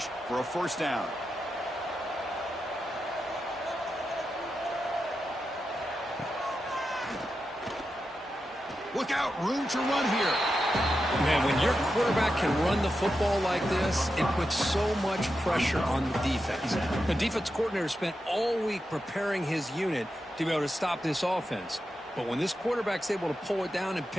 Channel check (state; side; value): normal; both; correlation 0.88